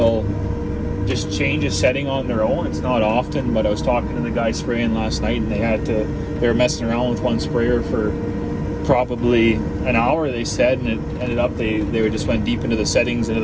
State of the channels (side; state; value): both; identical; correlation 1.00